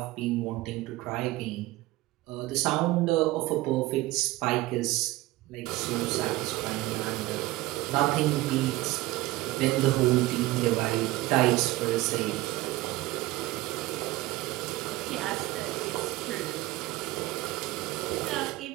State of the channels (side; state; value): left; quieter; 18.6 dB